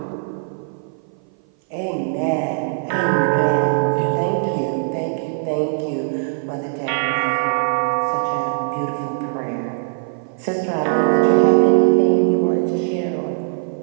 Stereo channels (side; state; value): left; silent; 57 dB below the other